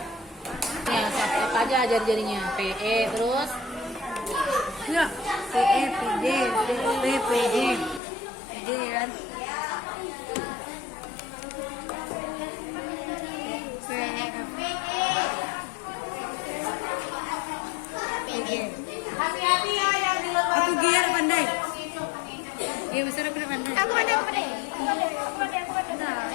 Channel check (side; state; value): right; drops out; at 8.0 s